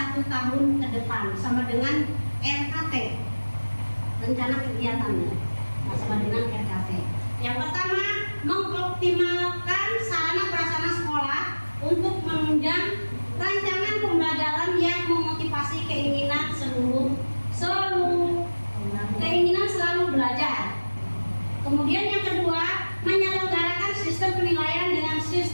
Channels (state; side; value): inverted; both; correlation -1.00